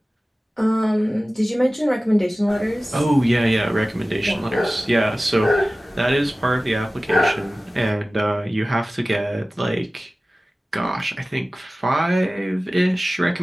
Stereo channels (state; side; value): normal; both; correlation 0.97